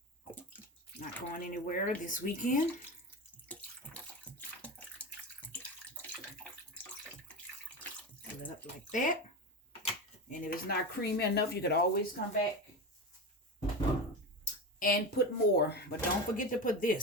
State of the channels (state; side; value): normal; both; correlation 0.22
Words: Not going anywhere this weekend. Fill it up like that. And if it's not creamy enough, you could always come back and put more. But don't forget to put